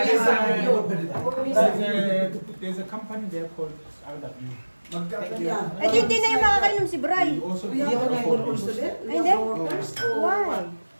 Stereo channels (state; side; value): inverted; both; correlation -1.00